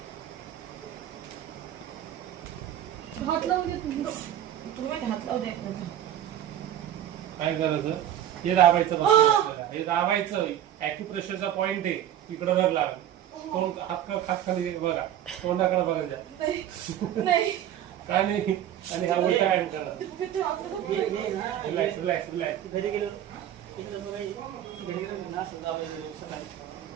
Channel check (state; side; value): quieter; left; 11.2 dB